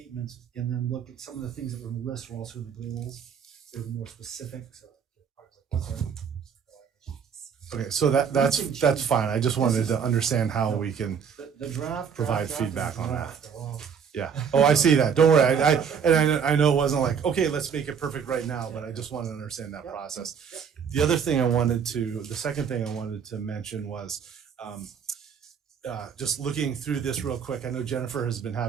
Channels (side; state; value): left; quieter; 7.1 dB